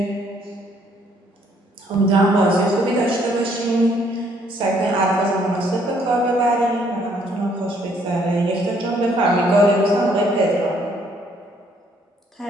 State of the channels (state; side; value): normal; both; correlation 0.66